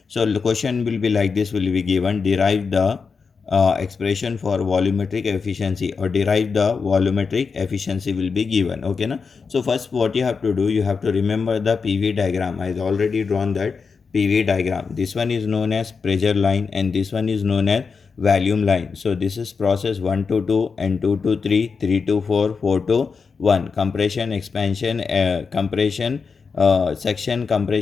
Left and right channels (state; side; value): quieter; right; 5.2 dB